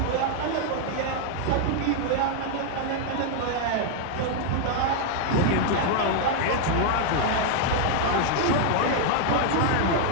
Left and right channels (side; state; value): both; different; correlation 0.00